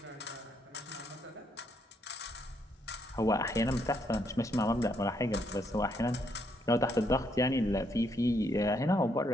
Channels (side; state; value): both; normal; correlation 0.74